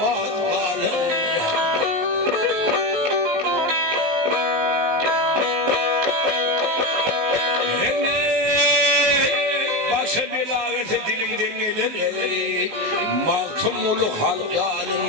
kalır. Dilimden gelir mahtumulu halk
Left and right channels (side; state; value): left; late; 19 ms